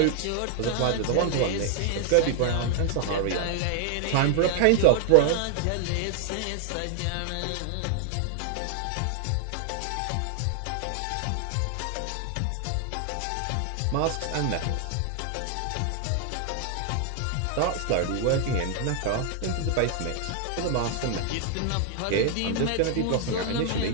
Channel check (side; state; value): both; different; correlation 0.00